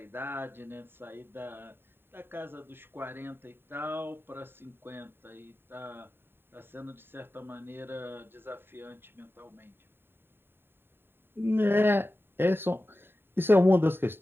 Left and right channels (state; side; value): late; left; 0.11 ms